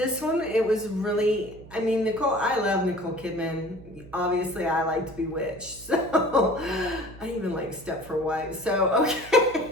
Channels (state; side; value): noise; right; hum, 19 dB below the sound